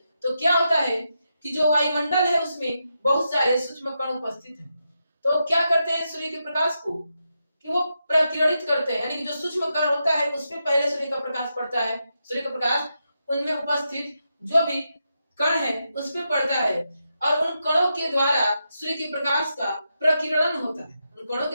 क्या होता है कि जो वायुमंडल है उसमें बहुत सारे सूक्ष्म कण उपस्थित हैं। तो क्या करते हैं सूर्य के प्रकाश को कि वो प्रकीर्णित करते हैं, यानी कि जो सूक्ष्म कण होता है उसमें पहले सूर्य का प्रकाश पड़ता है, सूर्य का प्रकाश उनमें उपस्थित जो भी कण है उस पे पड़ता है और उन कणों के द्वारा सूर्य के प्रकाश का प्रकीर्णन होता है। उन कणों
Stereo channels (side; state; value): both; inverted; correlation -0.85